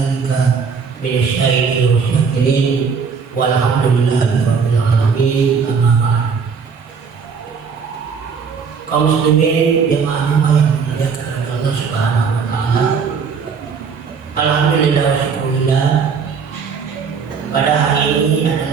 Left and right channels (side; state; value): left; quieter; 5.9 dB